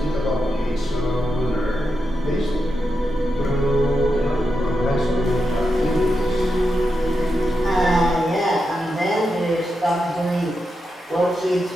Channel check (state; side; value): normal; both; correlation 0.87